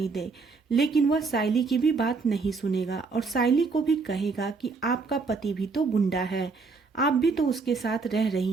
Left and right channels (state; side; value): quieter; left; 4.4 dB